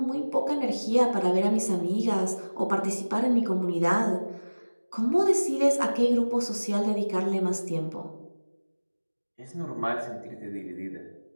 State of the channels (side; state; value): both; inverted; correlation -1.00